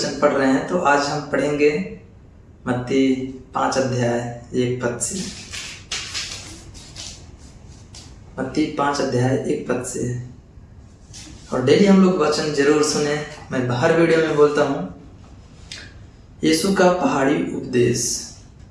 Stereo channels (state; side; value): identical; both; correlation 1.00